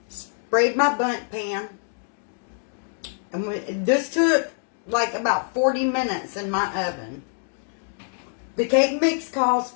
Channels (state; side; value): silent; right; 61 dB below the other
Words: Sprayed my bundt pan. And this took like about 40 minutes in my oven. The cake mix calls